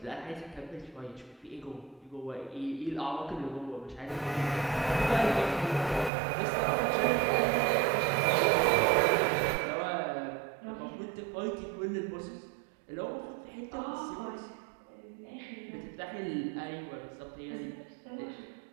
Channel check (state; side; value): drops out; left; at 6.1 s